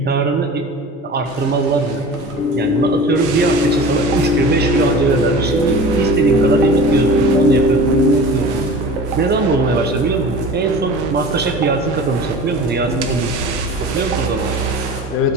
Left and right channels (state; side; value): normal; both; correlation 0.37